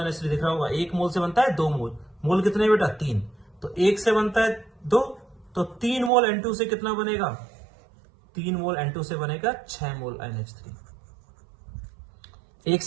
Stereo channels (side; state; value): left; drops out; at 6.1 s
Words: दिख रहा होगा। 1 मोल से बनता है 2 मोल, मोल कितने बेटा? 3। तो 1 से बनता है 2, तो 3 मोल N2 से कितना बनेगा? 3 मोल N2 से बनेगा 6 मोल NH3। 1